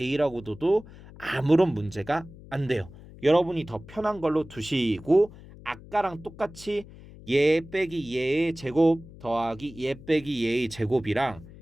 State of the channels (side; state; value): left; noise; hum, 19 dB below the sound